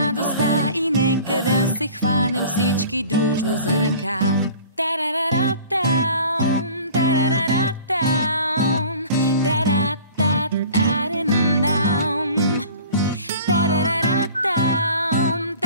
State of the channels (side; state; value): both; inverted; correlation -0.45